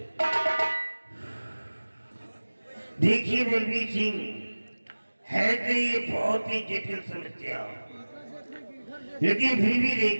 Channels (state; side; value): inverted; both; correlation -1.00